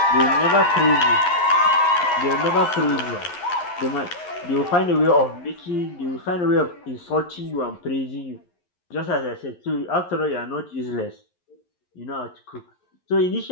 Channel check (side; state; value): right; late; 11 ms